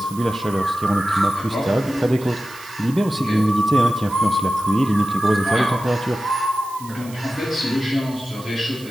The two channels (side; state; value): right; noise; hiss, 19 dB below the sound